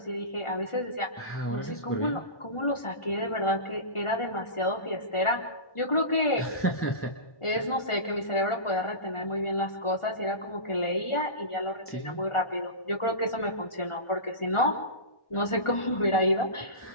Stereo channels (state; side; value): late; right; 1.4 ms